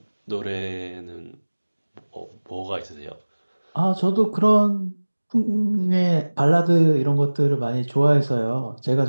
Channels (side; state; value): both; inverted; correlation -1.00